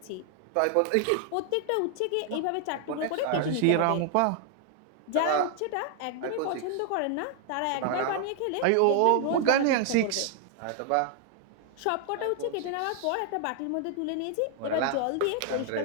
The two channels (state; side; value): different; both; correlation 0.00